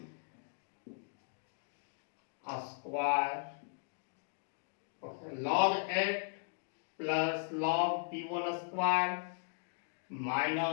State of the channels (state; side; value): silent; right; digital silence